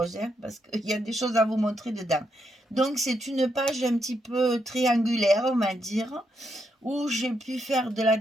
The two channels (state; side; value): normal; both; correlation 0.80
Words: hein, parce qu'il y a des choses à vous montrer dedans. Donc, c'est une page un petit peu triangulaire, on va dire, où j'ai pu faire de la